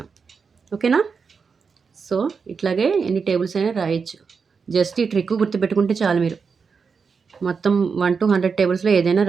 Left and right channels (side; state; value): left; quieter; 5.5 dB